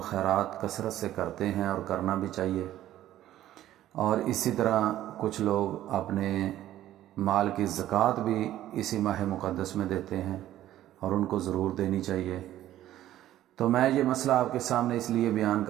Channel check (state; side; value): quieter; left; 13.3 dB